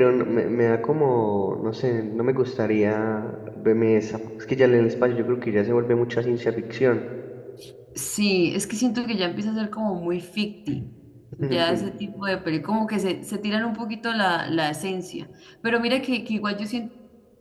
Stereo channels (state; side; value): identical; both; correlation 1.00